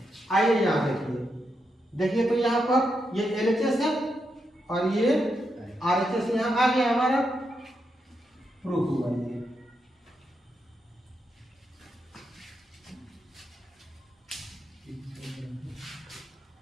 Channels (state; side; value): normal; both; correlation 0.83